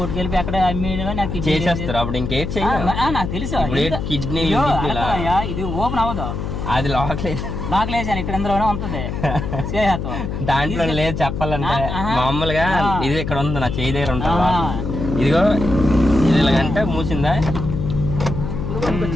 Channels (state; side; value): noise; left; hum, 4 dB below the sound